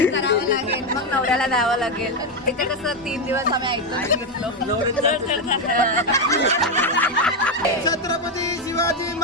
करावं लागेल, मग नवऱ्याला द्यावं लागेल. इथे कसं 3 दिवस आम्ही ऐकतो. छत्रपती शिवाजी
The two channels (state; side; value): normal; both; correlation 0.07